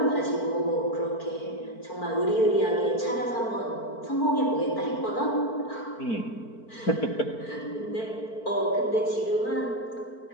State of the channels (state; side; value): late; right; 4.5 ms